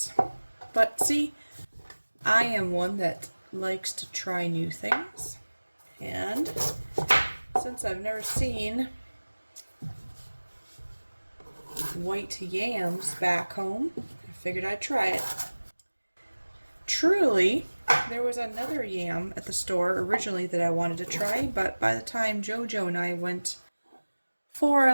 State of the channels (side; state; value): both; inverted; correlation -1.00